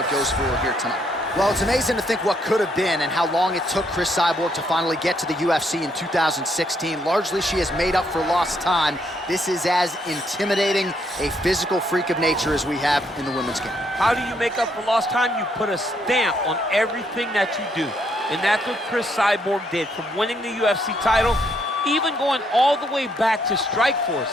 goes for her here tonight. Well, it's amazing to think what could have been and how long it took Cris Cyborg to finally get to the UFC in 2016. Largely, she has made up for lost time. This is as intimidating a physical freak of nature as we have in the women's game. How do you make up for lost time? You put a stamp on everything that you do. And that's what Cris Cyborg did, from winning the UFC title, even going all the way back to Strikeforce.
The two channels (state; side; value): normal; both; correlation 0.73